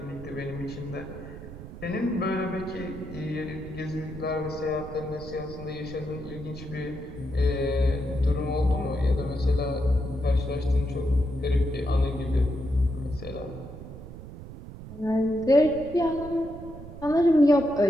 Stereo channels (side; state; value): right; noise; rumble, 13 dB below the sound